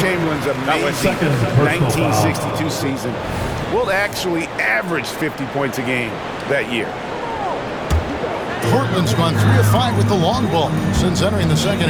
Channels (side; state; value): both; identical; correlation 1.00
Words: amazing 1962 season will actually average 50 points a game that year. Portland's gone 3 of 5 with the long ball since entering the second